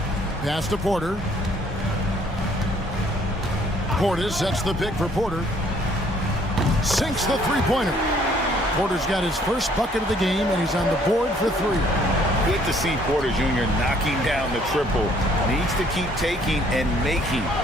Pass to Porter. Portis sets the pick for Porter. Sinks the three-pointer. Porter's got his first bucket of the game, and he's on the board for 3. Good to see Porter Jr. knocking down the triple. Needs to keep taking and making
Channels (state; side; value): normal; both; correlation 0.62